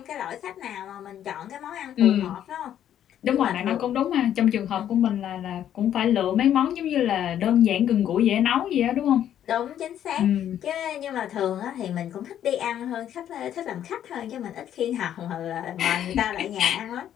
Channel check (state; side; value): quieter; right; 10.5 dB